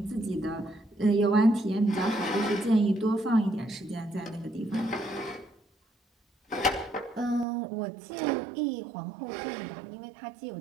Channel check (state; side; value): drops out; left; at 7.5 s